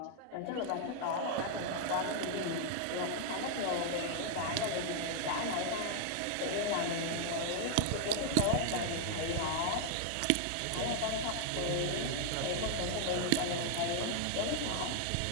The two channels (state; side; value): different; both; correlation 0.00